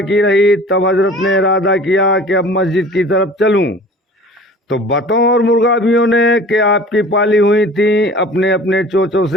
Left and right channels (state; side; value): normal; both; correlation 0.44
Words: रही तब हजरत ने इरादा किया कि अब मस्जिद की तरफ चलूं, तो बतों और मुर्गाबियों ने कि आपकी पाली हुई थी अपने अपने चोचों